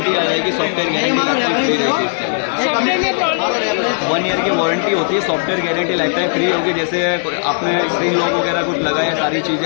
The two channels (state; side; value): silent; right; 68 dB below the other